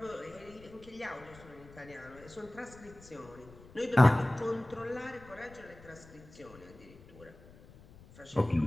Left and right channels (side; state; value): left; noise; rumble, 21 dB below the sound